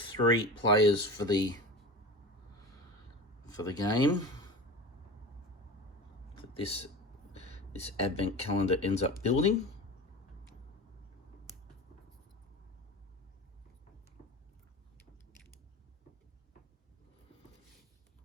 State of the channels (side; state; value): both; normal; correlation 0.31